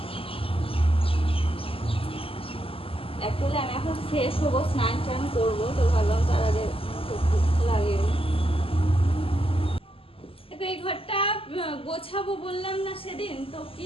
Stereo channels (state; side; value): late; right; 0.26 ms